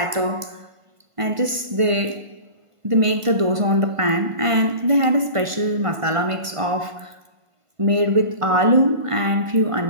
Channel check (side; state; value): left; late; 1.5 ms